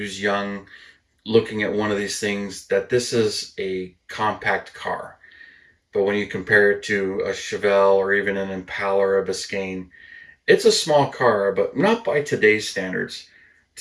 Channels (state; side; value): identical; both; correlation 1.00